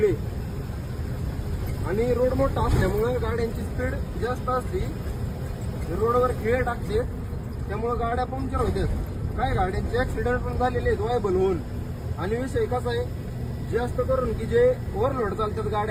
आणि रोड मोठा असल्यामुळे गाड्यांची स्पीड जास्त असते, रोडवर खिळे टाकतात, त्यामुळे गाड्या पंक्चर होतात. काय गाड्यांचे ऍक्सिडेंट पण झालेले आहेत वायबल होऊन. आणि विषय कसा आहे, जास्त करून की जे ओव्हरलोड चालतात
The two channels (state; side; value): identical; both; correlation 1.00